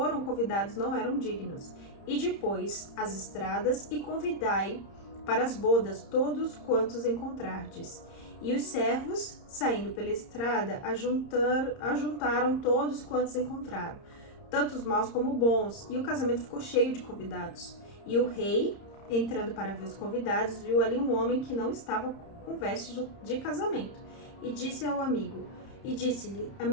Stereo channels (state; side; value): late; right; 30 ms